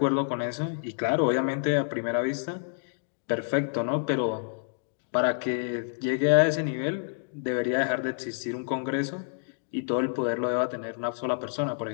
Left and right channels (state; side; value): silent; right; digital silence